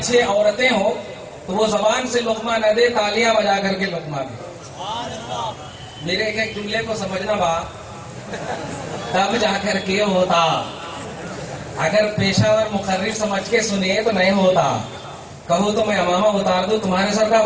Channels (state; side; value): identical; both; correlation 1.00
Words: عورتیں ہوں تو وہ زبان سے لقمہ نہ دے، تالیاں بجا کر کے لقمہ دے. میرے ایک جملے کو سمجھنا با تب جا کر کے ہوتا. اگر پیشہ ور مقرر سمجھ کے سنیے تو نہیں ہوتا. کہو تو میں امامہ اتار دوں، تمہارے سر کا